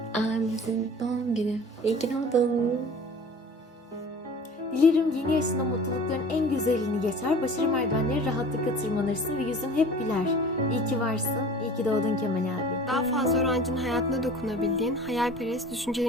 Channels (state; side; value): normal; both; correlation 0.43